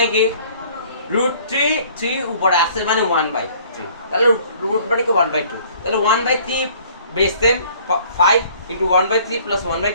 কি? √3 3 উপরে আসছে মানে 1/3, তাহলে রুট মানে কি 1/2, তাহলে 1/3 base same 5 into 1/3 plus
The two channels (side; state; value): both; inverted; correlation -0.55